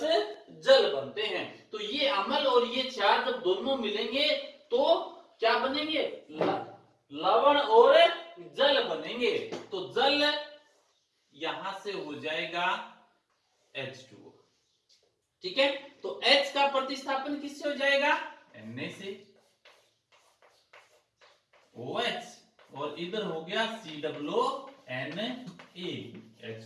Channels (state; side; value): identical; both; correlation 1.00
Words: जल बनते हैं। तो ये अम्ल और ये क्षार जब दोनों मिलेंगे तो क्या बनेंगे, लवण और जल बनेंगे। तो जल यहां से हो जाएगा H2O। ठीक है, तो H का प्रतिस्थापन किससे हो जाएगा, Na से, OH और इधर हो गया COONA